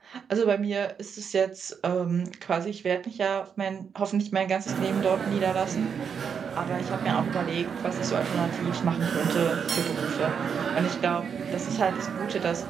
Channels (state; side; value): quieter; left; 6.9 dB